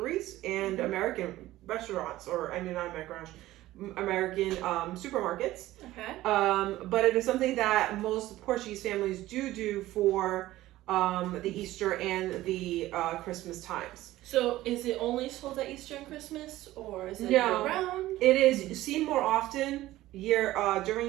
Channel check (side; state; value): left; quieter; 16.0 dB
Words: and American restaurants, not American restaurants, American supermarkets. Okay. But it is something that most Portuguese families do for the Easter and the Christmas times. So is it only sold at Easter and Christmas, or is it year-round? It is seen more often